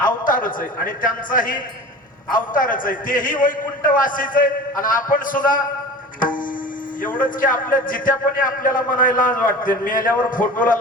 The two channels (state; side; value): normal; both; correlation 0.37